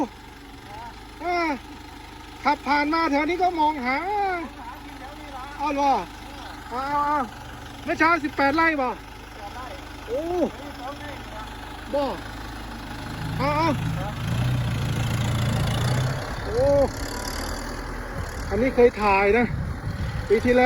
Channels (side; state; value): both; identical; correlation 1.00